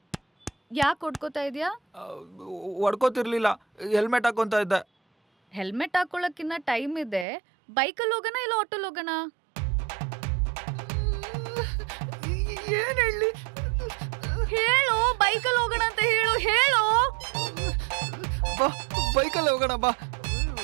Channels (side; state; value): left; drops out; at 7.2 s